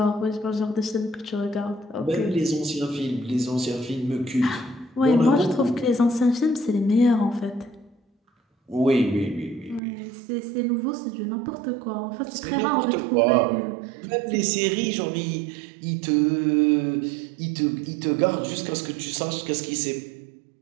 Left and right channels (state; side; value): drops out; left; at 9.8 s